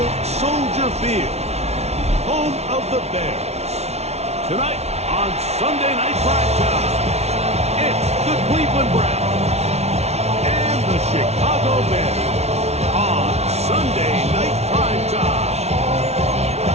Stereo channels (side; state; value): left; late; 0.31 ms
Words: Soldier Field, home of the Bears. Tonight on Sunday Night Primetime, it's the Cleveland Browns and the Chicago Bears on Sunday Night Primetime.